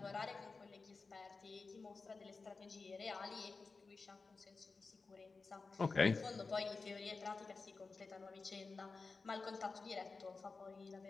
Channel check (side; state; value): right; quieter; 4.2 dB